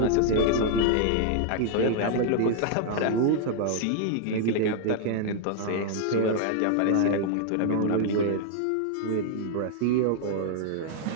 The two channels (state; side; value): different; both; correlation -0.01